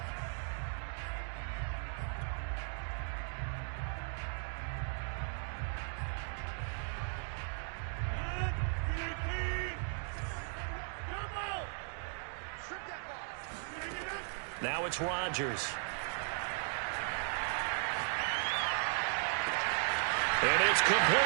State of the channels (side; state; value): left; silent; 53 dB below the other